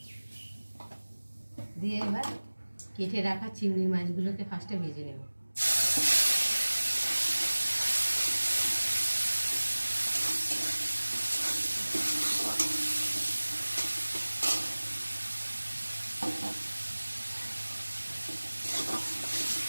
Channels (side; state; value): both; inverted; correlation -1.00